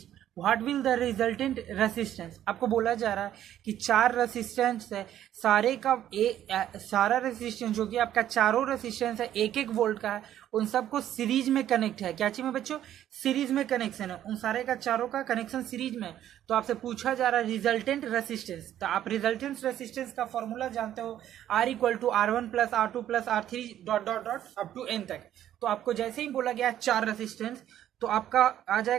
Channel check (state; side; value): quieter; left; 11.6 dB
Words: what will the resultant resistance. आपको बोला जा रहा है कि चार रेसिस्टेंस है, सारे का सारा रेसिस्टेंस जो कि आपका चारों रेसिस्टेंस है एक एक वोल्ट का है, उन सबको सीरीज में कनेक्ट है। क्या चीज में बच्चों? सीरीज में कनेक्शन है, उन सारे का चारों का कनेक्शन सीरीज में। तो आपसे पूछा जा रहा है रिजल्टेंट रेसिस्टेंस। तो आप रिजल्टेंट रेसिस्टेंस का फॉर्मूला जानते हो, R equal to R1 plus R2 plus R3 dot dot dot up to n तक। तो आपको जैसे ही बोला गया चार रेसिस्टेंस, तो आपका आ